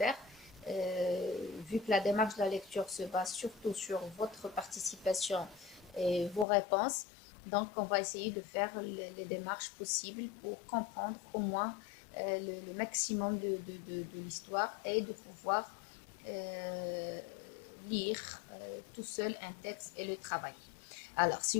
vu que la démarche de la lecture se base surtout sur votre participation et vos réponses, donc on va essayer de faire les démarches possibles pour comprendre au moins le maximum de l'histoire et de pouvoir euh, lire tout seul un texte et le travailler. Alors, si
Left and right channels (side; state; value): right; drops out; at 6.5 s